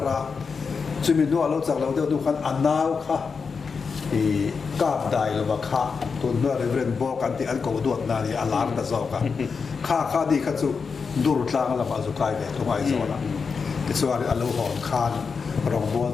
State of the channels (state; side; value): quieter; right; 5.3 dB